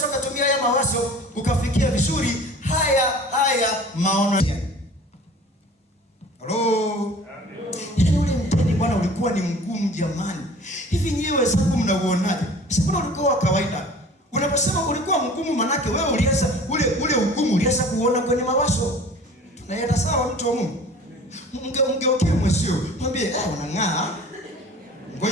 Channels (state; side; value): normal; both; correlation 0.45